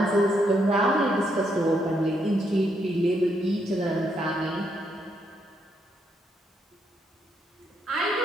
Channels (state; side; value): normal; both; correlation 0.76